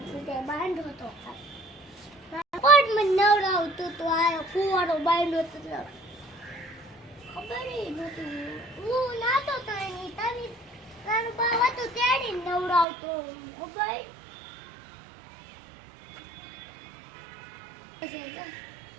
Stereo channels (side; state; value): left; drops out; at 12.9 s